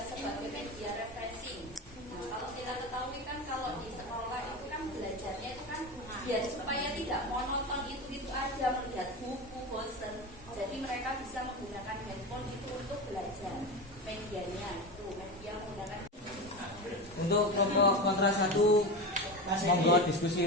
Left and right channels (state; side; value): normal; both; correlation 0.23